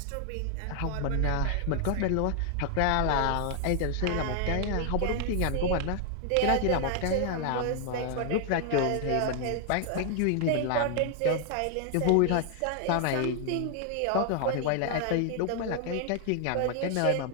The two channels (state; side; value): different; both; correlation 0.00